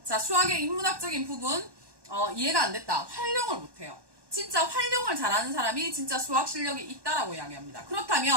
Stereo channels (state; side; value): late; left; 1.1 ms